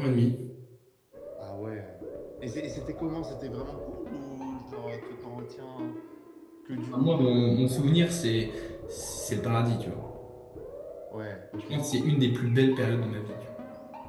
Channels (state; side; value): identical; both; correlation 1.00